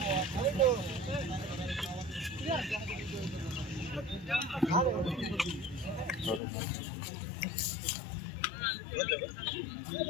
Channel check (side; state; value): right; drops out; at 6.4 s